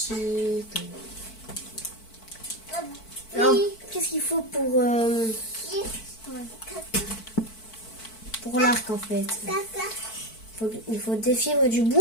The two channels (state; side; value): late; right; 4.5 ms